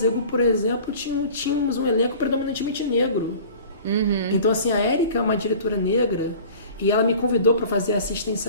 por exemplo, tínhamos um elenco predominantemente negro. Então, assim, a Érica é uma diretora negra e ela me convidou para fazer a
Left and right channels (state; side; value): inverted; both; correlation -0.43